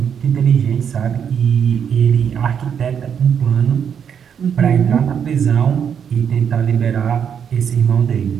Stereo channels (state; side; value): quieter; left; 7.8 dB